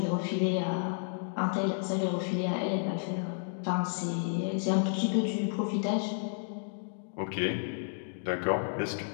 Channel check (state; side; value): silent; right; digital silence